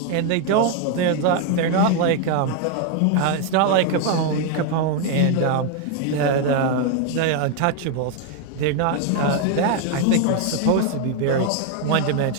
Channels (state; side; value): different; both; correlation 0.01